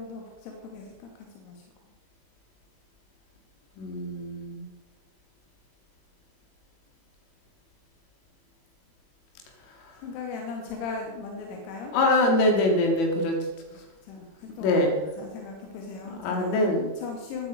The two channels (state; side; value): late; right; 22 ms